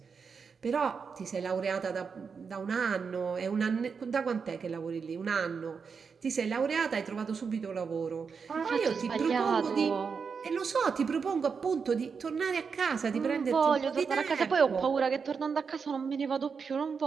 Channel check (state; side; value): quieter; left; 5.7 dB